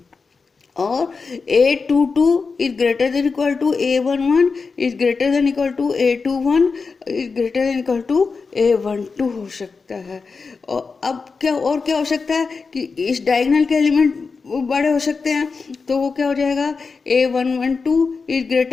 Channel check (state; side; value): quieter; right; 4.7 dB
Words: और A22 is greater than equal to A11 is greater than equal to A21 is greater than equal to A12 हो सकता है। और अब क्या हो सकता है कि इस डायगोनल के एलिमेंट बड़े हो सकते हैं। तो वो क्या हो जाएगा, A112 is